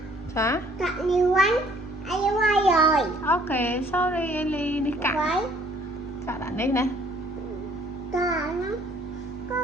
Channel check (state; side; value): normal; both; correlation 0.59